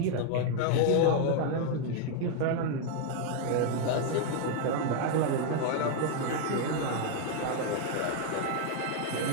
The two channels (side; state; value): both; different; correlation 0.00